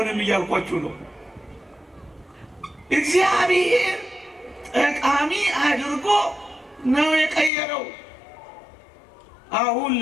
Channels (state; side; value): drops out; right; at 7.5 s